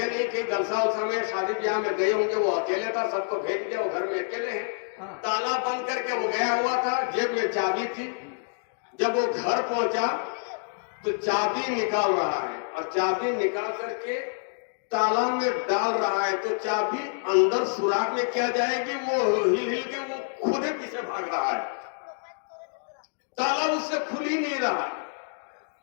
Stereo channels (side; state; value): right; silent; digital silence